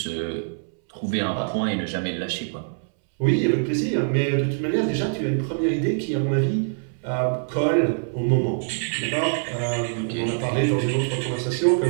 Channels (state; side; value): silent; left; 63 dB below the other